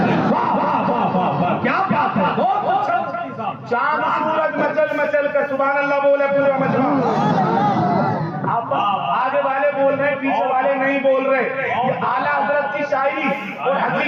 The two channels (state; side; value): identical; both; correlation 1.00